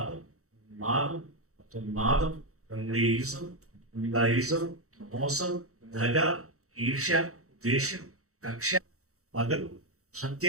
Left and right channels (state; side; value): late; left; 0.64 ms